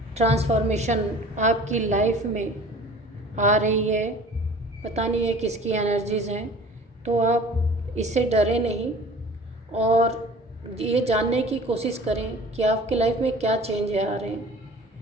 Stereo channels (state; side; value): normal; both; correlation 0.45